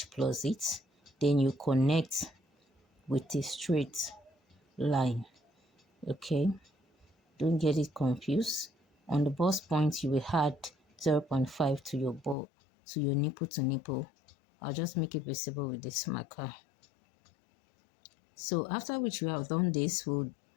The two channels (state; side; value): drops out; right; at 12.4 s